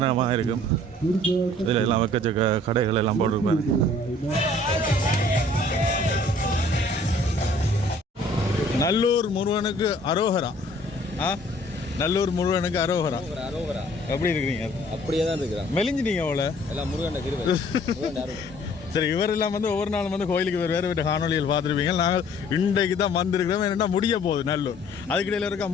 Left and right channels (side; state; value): both; normal; correlation 0.55